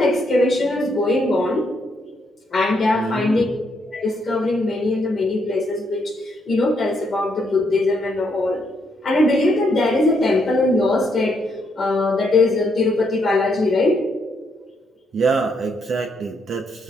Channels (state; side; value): normal; both; correlation 0.76